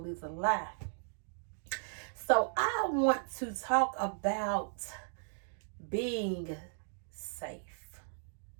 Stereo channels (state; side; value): silent; left; digital silence